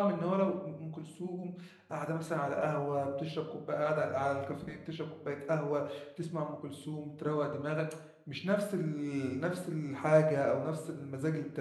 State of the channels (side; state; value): both; identical; correlation 1.00